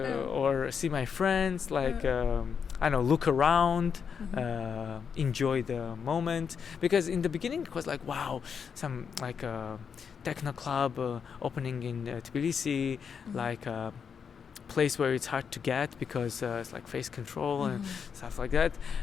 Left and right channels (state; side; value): quieter; right; 6.7 dB